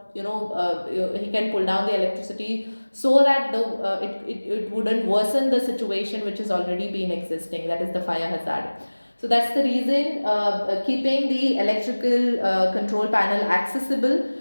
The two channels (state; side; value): inverted; both; correlation -1.00